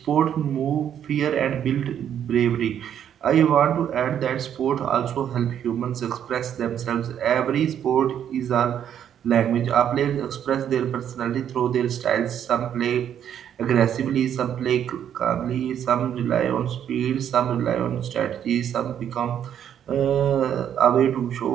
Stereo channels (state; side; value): quieter; left; 9.5 dB